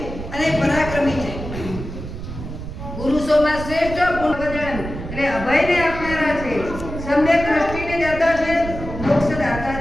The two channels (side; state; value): right; noise; rumble, 9 dB below the sound